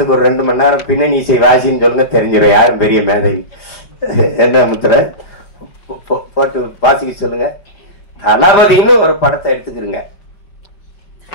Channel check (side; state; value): right; late; 4.9 ms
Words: ஒரு 2 மணி நேரம் பின்னணி இசை வாசின்னு சொல்லுங்க, தெரிஞ்சிடும் யாரும் பெரிய மேதை. என்ன முத்திர போட்டு வாசிக்க சொல்லுங்க. தளபதினு ஒரு படத்தை எடுத்துக்கிறீங்க.